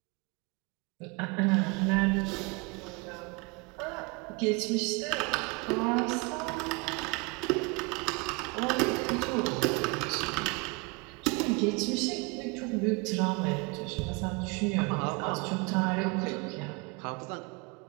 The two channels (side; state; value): left; quieter; 28.3 dB